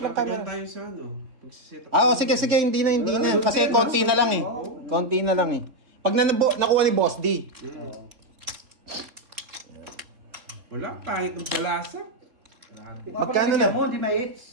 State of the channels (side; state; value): left; late; 3.7 ms